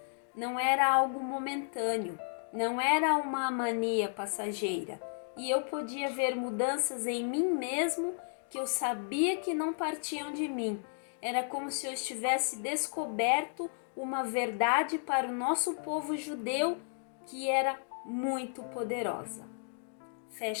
não era algo momentâneo, não era uma mania passageira, e eu podia ver mudanças em mim mesmo que eu sabia que não partiam de mim. Era como se eu estivesse descoberto uma verdade para o nosso povo judeu que era muito poderosa.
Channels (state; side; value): silent; right; digital silence